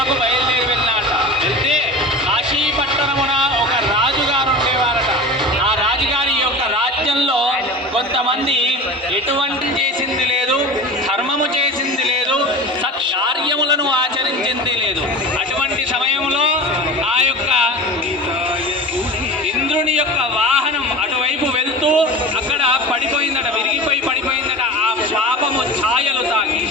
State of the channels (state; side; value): normal; both; correlation 0.33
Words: బయలుదేరి వెళ్ళాట. వెళ్తే కాశీపట్టణమున ఒక రాజుగారు ఉండేవారట. ఆ రాజుగారి యొక్క రాజ్యంలో కొంతమంది ఎటువంటి చేసింది లేదు, ధర్మము చేసింది లేదు, సత్కార్యములను ఆచరించింది లేదు. అటువంటి సమయంలో ఆ యొక్క ఇంద్రుని యొక్క వాహనం అటువైపు వెళ్తూ అక్కడ పడిపోయిందట, విరిగిపోయి పడిపోయిందట. ఆ పాపము ఛాయలు తాకి